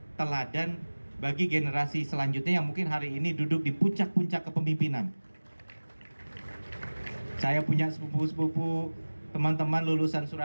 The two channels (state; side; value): inverted; both; correlation -1.00